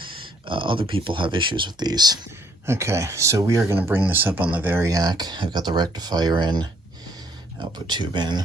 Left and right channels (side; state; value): both; normal; correlation 0.65